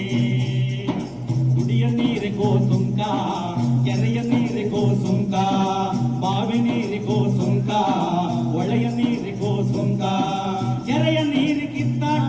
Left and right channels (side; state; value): both; identical; correlation 1.00